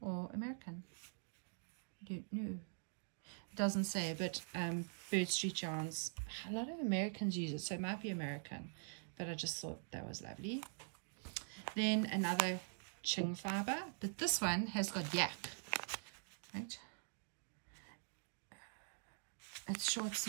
or American. I don't know. It doesn't say, but Bird Street yarns, a lot of Americans use it, so it might be American, but I just thought that was lovely. Then another Ching fiber, but this one has got yak, right? It's short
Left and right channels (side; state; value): left; silent; digital silence